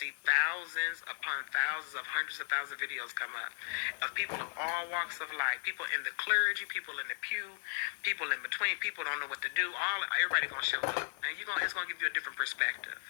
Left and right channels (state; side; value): silent; right; 54 dB below the other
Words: thousands upon thousands of hundreds of thousands of videos come up of people of all walks of life, people in the clergy, people in the pew, people in between, people don't know what to do, everybody going to show up, and it's going to give you a different perspective.